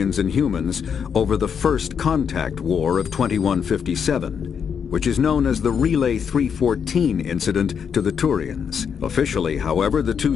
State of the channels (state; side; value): quieter; right; 7.1 dB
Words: and humans over the First Contact War of 2157, which is known as the Relay 314 incident to the Turians. Officially, however, the